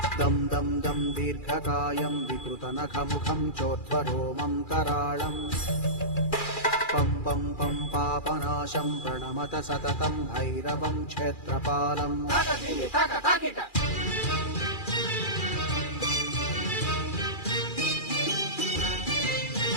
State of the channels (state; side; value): late; right; 2.4 ms